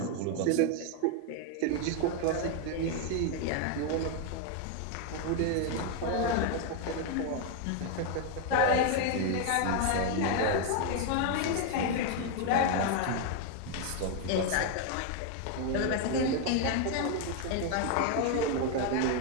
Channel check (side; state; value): both; different; correlation 0.01